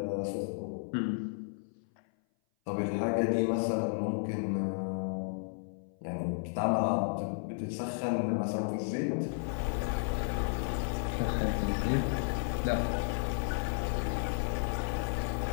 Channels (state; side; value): silent; right; 56 dB below the other